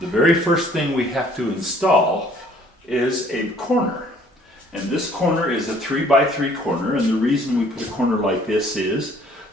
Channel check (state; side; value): normal; both; correlation 0.58